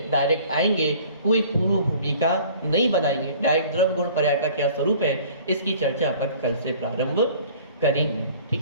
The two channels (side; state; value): both; inverted; correlation -0.50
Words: डायरेक्ट आएंगे, कोई पूर्व भूमिका नहीं बनाएंगे, डायरेक्ट द्रव्य गुण पर्याय का क्या स्वरूप है इसकी चर्चा अपन कल से प्रारंभ करेंगे। ठीक